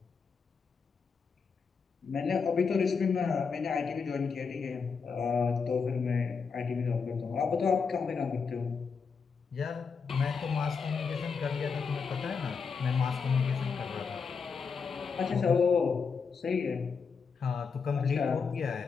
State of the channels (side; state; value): right; quieter; 5.5 dB